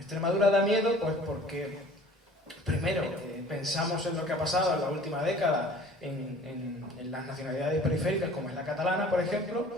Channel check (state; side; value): normal; both; correlation 0.48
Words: da miedo, pues porque, primero, pensamos en lo que ha pasado en la última década en las nacionalidades periféricas, como es la catalana, por ejemplo,